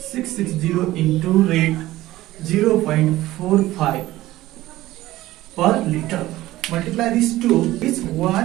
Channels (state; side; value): quieter; left; 16.4 dB